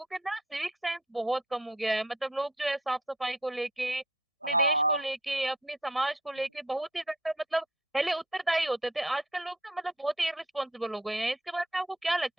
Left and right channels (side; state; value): both; normal; correlation 0.58